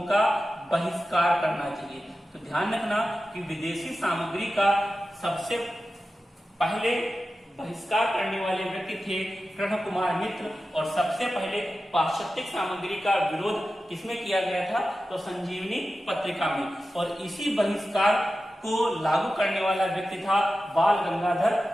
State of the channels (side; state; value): both; normal; correlation 0.93